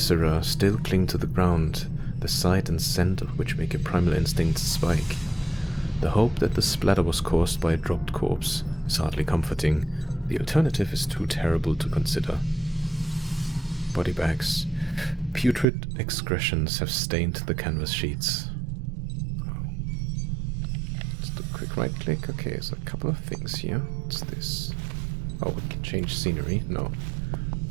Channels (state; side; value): drops out; left; at 15.7 s